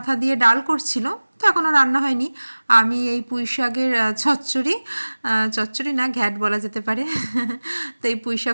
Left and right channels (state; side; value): inverted; both; correlation -1.00